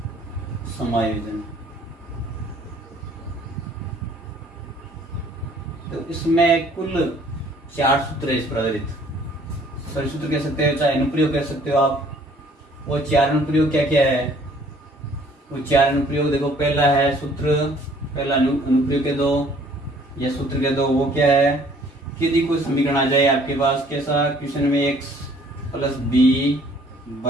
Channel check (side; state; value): both; normal; correlation 0.58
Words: समायोजन। तो इसमें कुल 4 सूत्र है इस पर आधारित। सभी सूत्र कह सकते हो, चाहे अनुप्रयोग कह सकते हो आप। वो 4 अनुप्रयोग क्या क्या है, वो 4 अनुप्रयोग देखो। पहला है सूत्र, पहला अनुप्रयोग कह दो या सूत्र कह दो, वो क्या है कि यदि कोई समीकरण आ जाए आपके पास, कैसा, क्वेश्चन में x प्लस बी